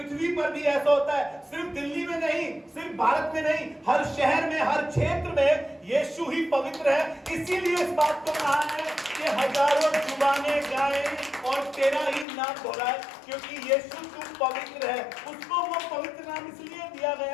पर भी ऐसा होता है। सिर्फ दिल्ली में नहीं, सिर्फ भारत में नहीं, हर शहर में, हर क्षेत्र में यीशु ही पवित्र है। इसीलिए इस बात को कहा है कि हजारों जुबानें गाएं और तेरा ही नाम दोहराए, क्योंकि यीशु तू पवित्र है। उसको वो पवित्र नाम इसलिए दिया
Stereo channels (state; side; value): drops out; right; at 12.2 s